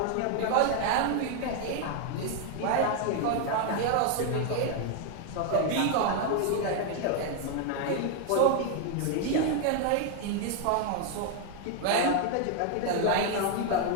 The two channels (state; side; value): different; both; correlation 0.01